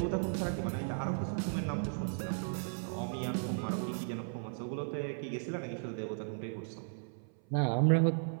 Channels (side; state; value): left; silent; 54 dB below the other